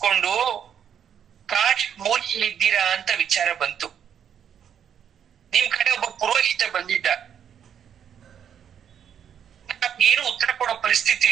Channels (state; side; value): quieter; left; 8.7 dB